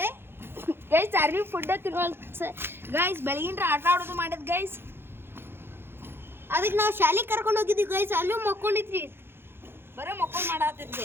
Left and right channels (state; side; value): late; left; 0.11 ms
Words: ಗೈಸ್ ಚಾರ್ಲಿ ಫುಡ್ ತಿನ್ನೋಲ್ ಗೈಸ್. ಬೆಳಗಿನ ಆಟ ಆಡೋದು ಮಾಡಿದ್ ಗೈಸ್. ಅದಕ್ಕೆ ನಾವು ಶಾಲೆಗೆ ಕರ್ಕೊಂಡು ಹೋಗಿದ್ವಿ ಗೈಸ್. ಅಲ್ಲೂ ಮಕ್ಕೊಂಡಿದ್ರಿ. ಬರೀ ಮಕ್ಕಳು ಮಾಡತ್ತೈತಿ